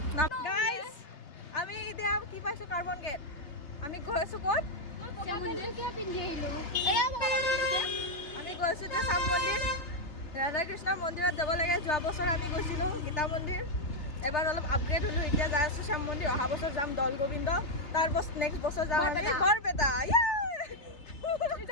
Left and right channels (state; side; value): late; right; 3.3 ms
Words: গাইজ আমি এতিয়া কি পাইছোঁ কাৰ্বন গেট আমি গৈ আছোঁ ক'ত আমি গৈছোঁ এতিয়া চাম মন্দিৰ ৰাধা কৃষ্ণৰ মন্দিৰত যাব লাগে যোৱা বছৰ আমি গৈছিলোঁ গীতা মন্দিৰ এবাৰ অলপ আপগ্ৰেড হ'লোঁ এতিয়া যাই আছোঁ শ্যাম মন্দিৰ অহা বছৰ যাম দৌল গোবিন্দ তাৰ নেক্সট বছৰ যাম আমি বৰপেটা